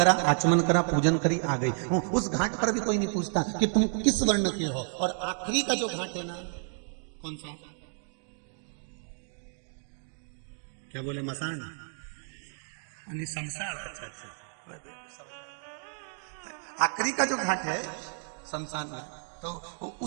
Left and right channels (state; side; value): silent; left; 57 dB below the other